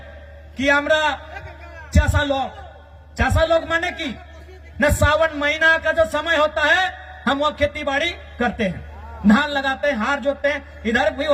कि আমরা चासा लोग माने की न, सावन महीना का जो समय होता है हम वो खेती बाड़ी करते हैं, धान लगाते हैं, हार जोतते हैं। इधर भी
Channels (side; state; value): both; identical; correlation 1.00